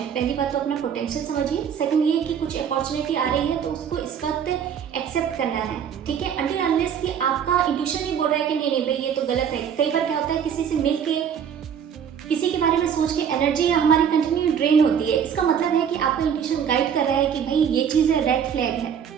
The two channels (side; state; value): left; quieter; 8.0 dB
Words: पहली बात तो अपना पोटेंशियल समझिए, सेकंड ये कि कुछ अपॉर्चुनिटी आ रही है तो उसको इस वक्त एक्सेप्ट करना है। ठीक है, अनटिल अनलेस कि आपका इंट्यूशन नहीं बोल रहा है कि नहीं नहीं भाई ये तो गलत है। कई बार क्या होता है, किसी से मिल के किसी के बारे में सोच के एनर्जी हमारी कंटिन्यू ड्रेन होती है, इसका मतलब है कि आपका इंट्यूशन गाइड कर रहा है कि भाई ये चीज़ रेड फ्लैग है।